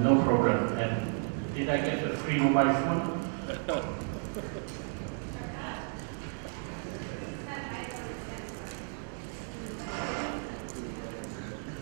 problem. And did I get a free mobile phone?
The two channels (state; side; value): silent; left; 56 dB below the other